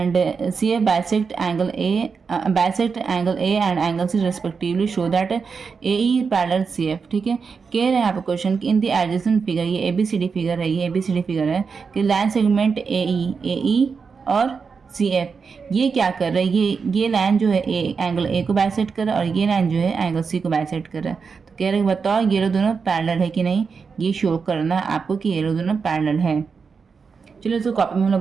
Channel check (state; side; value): quieter; left; 5.4 dB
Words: CF bisect angle A and angle C respectively show that AE parallel CF। ठीक है, कह रहे हैं यहाँ पे क्वेश्चन कि इन द एडजेसेंट फिगर, ये ABCD फिगर है, ये ABCD फिगर है कि लाइन सेगमेंट AE और CF ये क्या कर रहा है, ये लाइन जो है एंगल A को बाइसेक्ट कर रहा है और ये लाइन जो है एंगल C को बाइसेक्ट कर रहा है। तो कह रहे हैं बताओ ये लोग दोनों पैरेलल है कि नहीं, ये शो करना है आपको कि ये लोग दोनों पैरेलल है। चलो इसको कॉपी में हम लोग